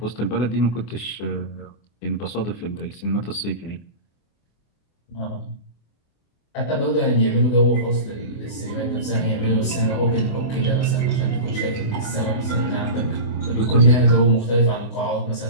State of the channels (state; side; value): late; right; 24 ms